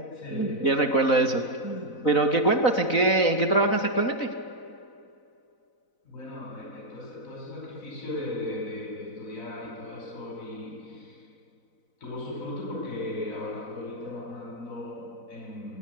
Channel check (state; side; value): late; right; 4.0 ms